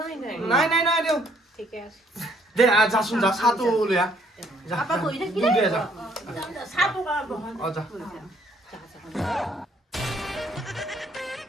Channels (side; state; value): both; normal; correlation 0.65